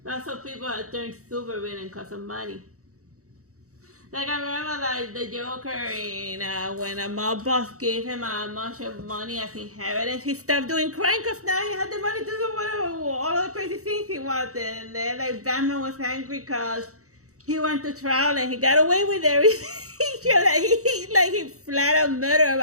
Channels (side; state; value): left; late; 0.65 ms